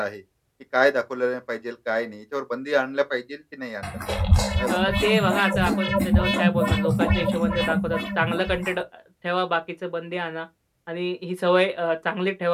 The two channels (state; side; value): identical; both; correlation 1.00